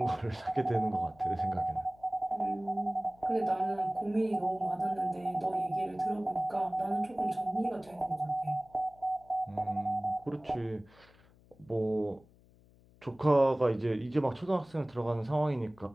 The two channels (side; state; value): left; noise; hum, 27 dB below the sound